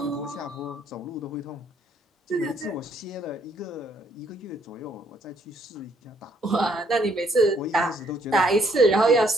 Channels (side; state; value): both; normal; correlation 0.68